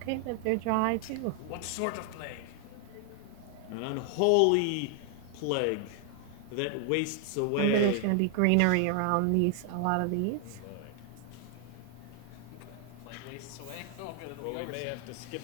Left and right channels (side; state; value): both; different; correlation 0.00